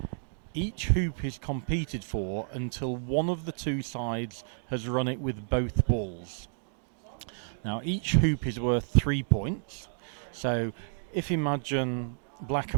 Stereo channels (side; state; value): left; silent; digital silence